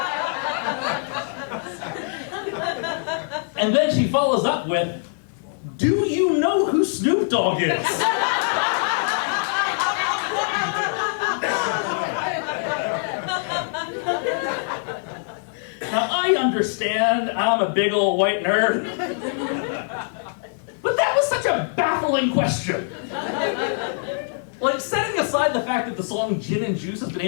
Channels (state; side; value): silent; right; digital silence